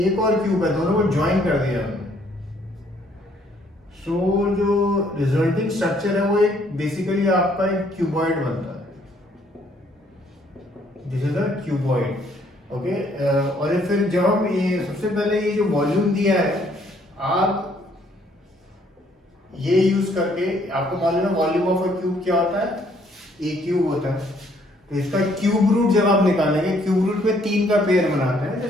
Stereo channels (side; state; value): both; normal; correlation 0.66